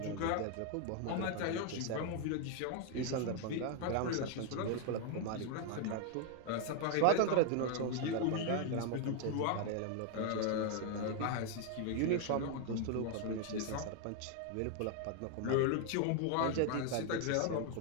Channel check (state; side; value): different; both; correlation 0.00